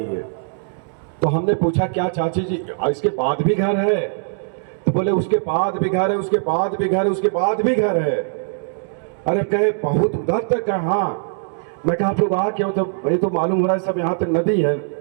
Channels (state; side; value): silent; left; digital silence